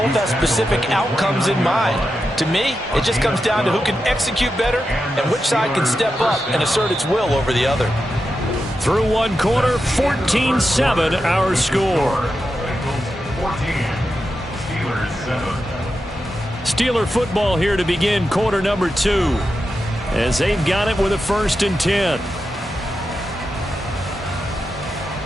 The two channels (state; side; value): normal; both; correlation 0.89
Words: have specific outcomes in mind. To me, it just comes down to who can execute better and which side can step up and assert its will over the other. Through one quarter, 14-7 our score. Bengals 14, Steelers 7. Steeler football here to begin quarter number 2 as they've got it with a 1st and 10.